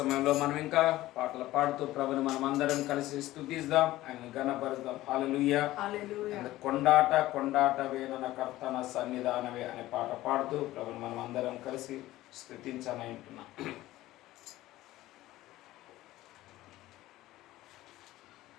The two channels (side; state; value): right; quieter; 16.3 dB